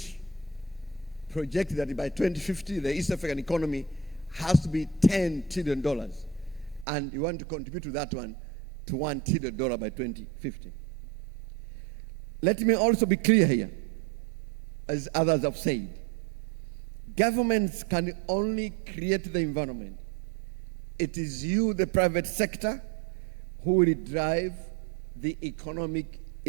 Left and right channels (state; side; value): drops out; left; at 6.9 s